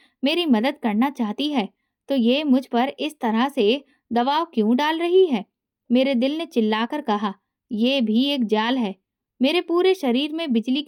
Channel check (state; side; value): identical; both; correlation 1.00